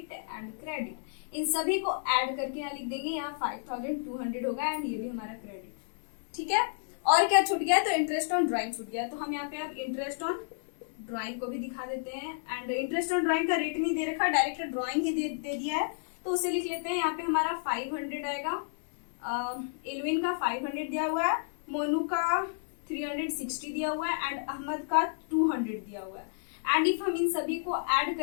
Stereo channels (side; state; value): right; silent; 57 dB below the other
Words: एंड क्रेडिट, इन सभी को ऐड करके यहाँ लिख देंगे, यहाँ 5,200 होगा, एंड ये भी हमारा क्रेडिट, ठीक है। और क्या छूट गया? तो इंटरेस्ट ऑन ड्राइंग छूट गया, तो हम यहाँ पे अब इंटरेस्ट ऑन ड्राइंग को भी दिखा देते हैं। एंड इंटरेस्ट ऑन ड्राइंग का रेट नहीं दे रखा, डायरेक्ट ड्राइंग ही दे दिया है, तो उसे लिख लेते हैं। यहाँ पे हमारा 500 आएगा, इलविन का 500 दिया हुआ है, मोनू का 360 दिया हुआ है, एंड अहमद का 200 दिया हुआ है। एंड इफ हम इन सभी को ऐड